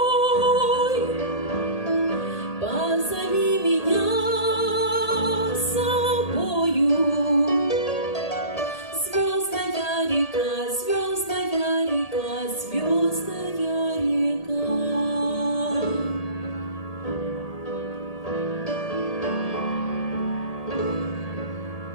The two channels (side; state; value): right; late; 1.8 ms